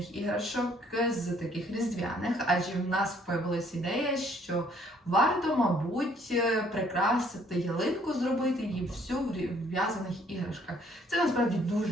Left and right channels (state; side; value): normal; both; correlation 0.63